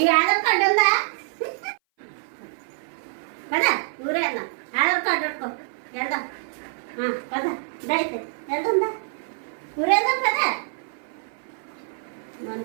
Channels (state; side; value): silent; left; 58 dB below the other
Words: ఆధార్ కార్డు ఉందా పద ఊరేద్దాం ఆధార్ కార్డు పెట్టుకో వెళ్దాం పద దైతే వెళ్తుందా ఊరేద్దాం పద